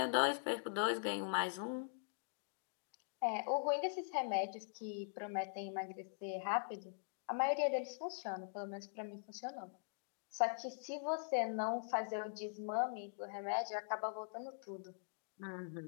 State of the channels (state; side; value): silent; right; digital silence